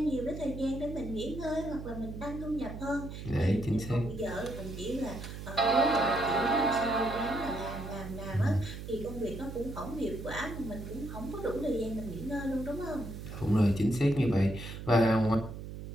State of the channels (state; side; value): noise; right; hum, 9 dB below the sound